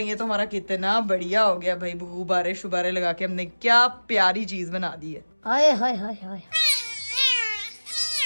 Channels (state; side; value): inverted; both; correlation -1.00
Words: ये तो हमारा कितना बढ़िया हो गया भाई, गुब्बारे शुबारे लगा के हमने क्या प्यारी चीज बना दी है। हाय हाय हाय हाय,